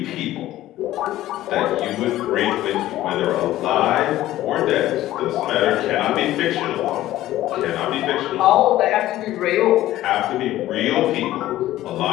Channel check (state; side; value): quieter; right; 14.7 dB